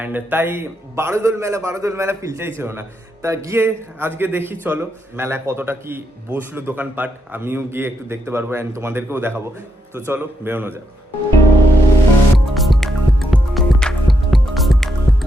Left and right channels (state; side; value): normal; both; correlation 0.80